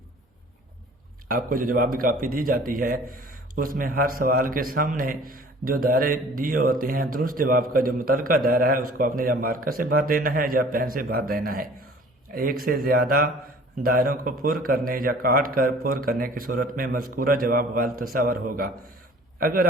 आपको जो जवाबी कापी दी जाती है उसमें हर सवाल के सामने जो दायरे दिए होते हैं, दुरुस्त जवाब का जो मुतल्लिका दायरा है उसको आपने या मार्कर से बांध देना है या पेन से बांध देना है। एक से ज़्यादा दायरों को पुर करने या काट कर पुर करने की सूरत में मज़कूरा जवाब गलत तस्वर होगा। अगर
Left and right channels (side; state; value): both; normal; correlation 0.49